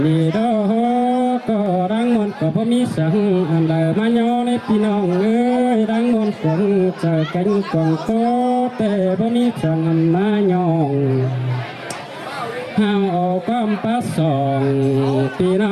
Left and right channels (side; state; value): both; identical; correlation 1.00